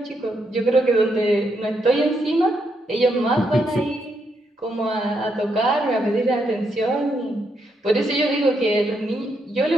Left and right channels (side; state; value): both; normal; correlation 0.78